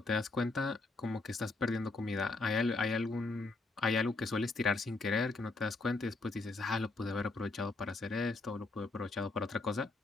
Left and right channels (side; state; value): right; quieter; 3.4 dB